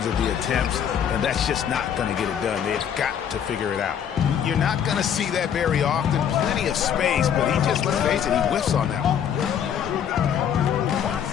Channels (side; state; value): right; quieter; 8.6 dB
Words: of the attempts, and that's just not going to get it done. They've got to figure it out. You're not going to see that very often. Plenty of space, but he just, let's face it, he whiffs on that one.